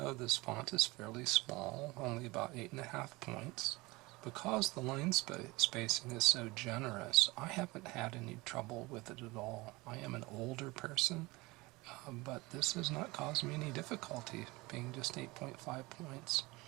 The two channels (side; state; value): left; quieter; 22.5 dB